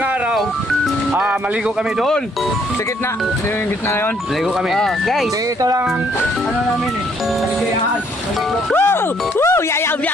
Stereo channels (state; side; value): normal; both; correlation 0.67